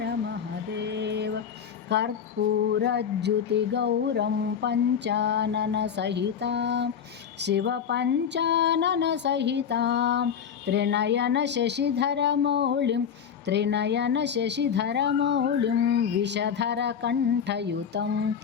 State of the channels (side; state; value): right; quieter; 7.8 dB